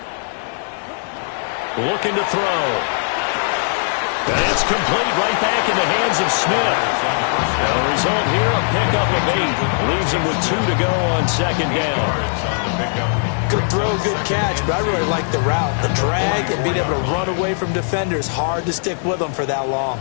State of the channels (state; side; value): silent; right; digital silence